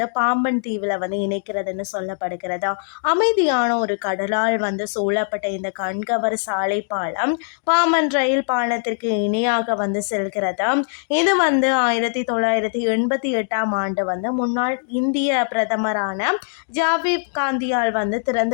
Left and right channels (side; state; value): right; silent; digital silence